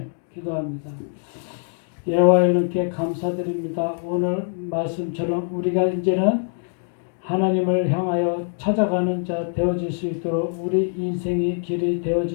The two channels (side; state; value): right; silent; 63 dB below the other